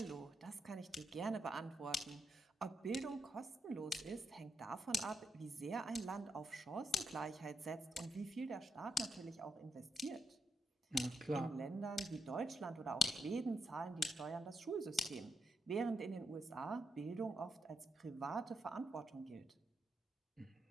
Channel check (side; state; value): both; normal; correlation 0.81